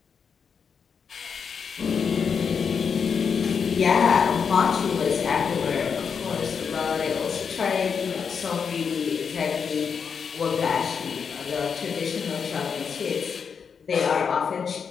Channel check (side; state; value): right; quieter; 6.4 dB